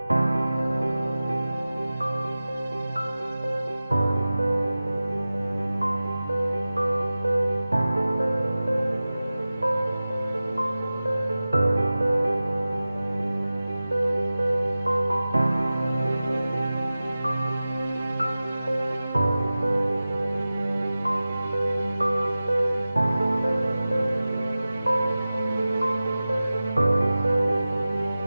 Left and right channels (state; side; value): inverted; both; correlation -0.96